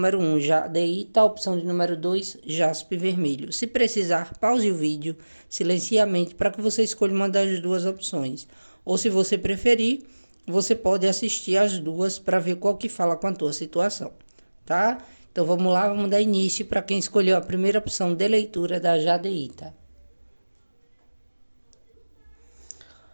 1, jadeíta. Opção de número 2, jaspe vermelho. Se precisar, pause o vídeo, silencie a mente para que você escolha uma das duas opções. Ou se você preferir, você pode assistir as duas para ver qual que fala com a tua situação, tá? Então vamos lá, vamos dar início para quem escolheu a primeira opção de leitura da jadeíta.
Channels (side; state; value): both; inverted; correlation -1.00